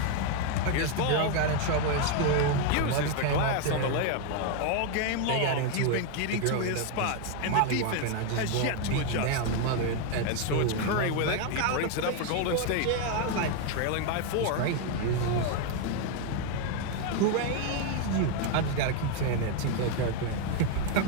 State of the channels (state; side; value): different; both; correlation 0.01